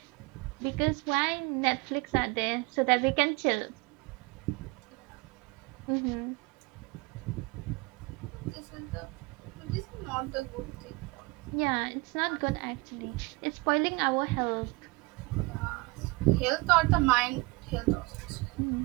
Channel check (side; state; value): left; quieter; 24.7 dB